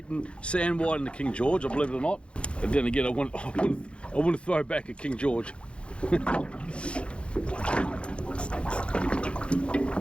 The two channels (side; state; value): right; late; 0.058 ms